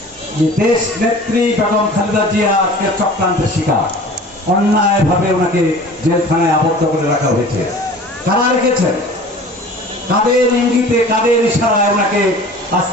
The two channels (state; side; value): normal; both; correlation 0.43